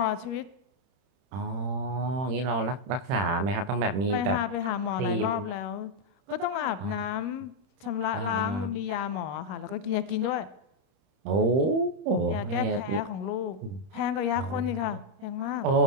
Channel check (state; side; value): late; left; 31 ms